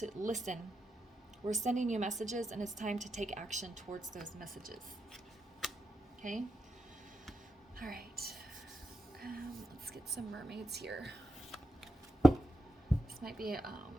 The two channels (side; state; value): both; normal; correlation 0.86